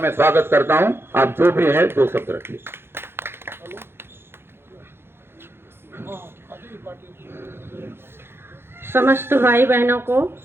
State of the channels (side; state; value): left; late; 0.11 ms